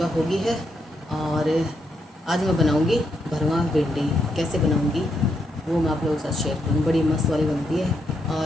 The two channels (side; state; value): both; normal; correlation 0.79